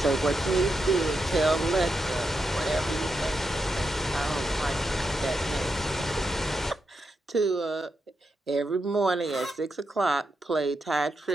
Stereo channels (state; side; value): normal; both; correlation 0.85